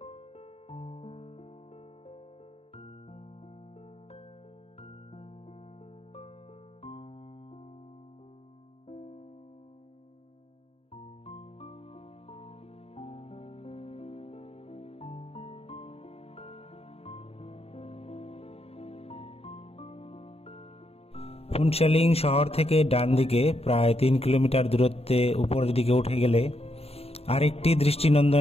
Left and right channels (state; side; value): late; right; 0.29 ms